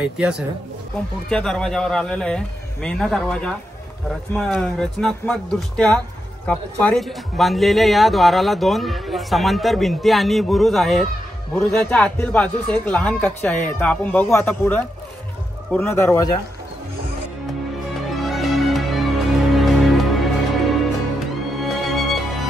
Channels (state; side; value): normal; both; correlation 0.85